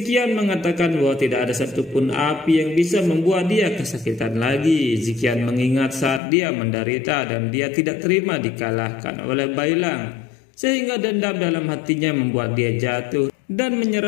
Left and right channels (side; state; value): right; drops out; at 6.2 s